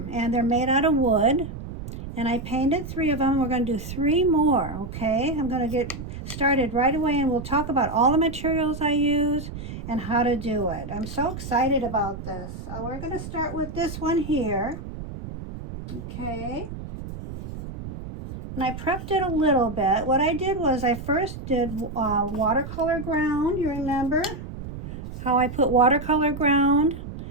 and they're made out of wood. And I painted 3 of them. We're going to do 3 more, okay? I'm going to get started right away, and we'll talk about all the materials I use and how to do it. I'm so excited about this. We're going to start with this one here, okay? And I prepped it a little bit. What I did was I first did watercolor ground. You remember how I put watercolor ground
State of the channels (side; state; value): right; noise; rumble, 10 dB below the sound